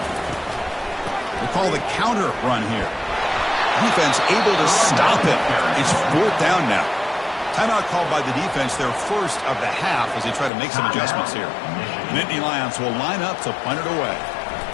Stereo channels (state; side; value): drops out; right; at 10.5 s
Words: We'll call the counter run here. Defense able to stop it. It's fourth down now. Timeout called by the defense, their first of the half, as they try to make some adjustments here. Nittany Lions will line up to punt it away.